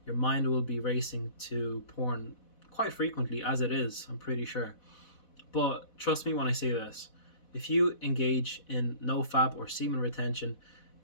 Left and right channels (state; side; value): late; right; 4.1 ms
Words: Your mind will be racing to porn quite frequently, as it is, I'm pretty sure. But trust me when I say this. If you engage in nofap or semen retention,